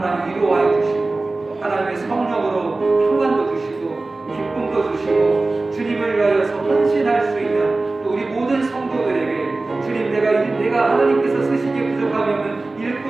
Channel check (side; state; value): left; quieter; 3.3 dB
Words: 위로하여 주시고 하나님의 성령으로 평안도 주시고 기쁨도 주시고 주님을 위하여서 헌신할 수 있는 또 우리 모든 성도들에게 주님 내가 하나님께서 쓰시기에 부족하면